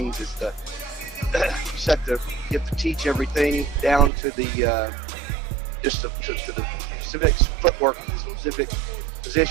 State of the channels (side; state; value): left; drops out; at 4.1 s